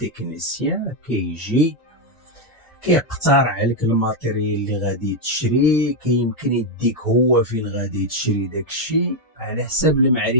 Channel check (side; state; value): both; normal; correlation 0.02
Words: كيجي كيقترح عليك الماتيريال اللي غادي تشري، كيمكن يديك هو فين غادي تشري داكشي على حساب